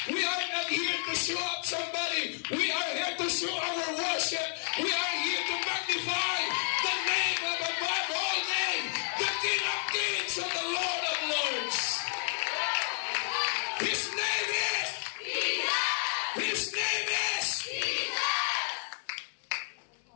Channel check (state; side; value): silent; right; 57 dB below the other